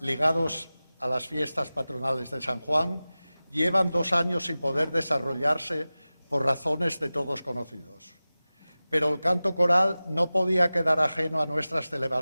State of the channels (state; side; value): inverted; both; correlation -0.97